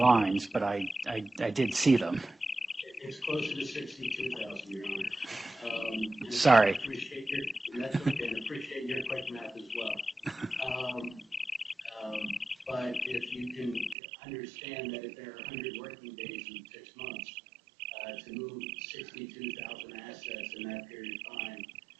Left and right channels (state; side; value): drops out; left; at 14.0 s